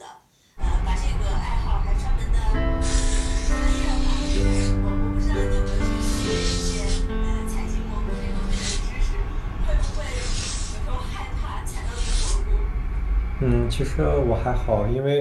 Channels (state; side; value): identical; both; correlation 1.00